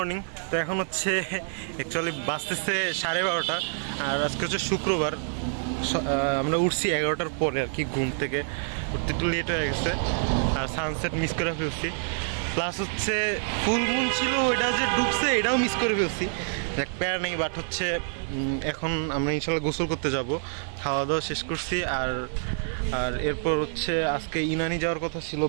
তো এখন হচ্ছে অ্যাকচুয়ালি বাজতেছে 12:30 আর আজকে হচ্ছে শুক্রবার। আমরা উঠছি 11টার পরে আর কি, ঘুম থেকে উঠতে একটু লেট হয়ে গেছে আর সানসেট মিস করে ফেলছি। প্লাস হচ্ছে ফুল মুন ছিল, ওইটা যে ডুবছে এটাও মিস করে ফেলছি। দেখ প্যার নেই, বাট হচ্ছে এখন আমরা ইনশাল্লাহ গোসল করতে যাব। খাওয়া দাওয়া শেষ করছি আর এরপর হচ্ছে আজকে ইনানি যাওয়ার কথা ছিল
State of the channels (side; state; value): left; silent; 60 dB below the other